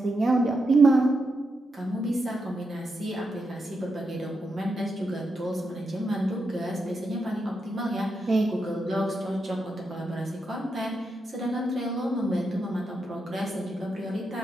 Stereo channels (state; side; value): normal; both; correlation 0.85